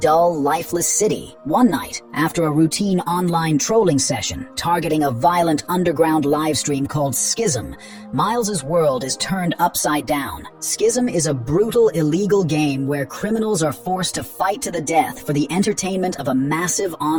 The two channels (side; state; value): both; identical; correlation 1.00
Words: lifeless city. One night, after a routine online trolling session targeting a violent underground livestream called Schism, Miles's world is turned upside down. Schism is a brutal, illegal game where criminals are forced to fight to the death for the entertainment of a massive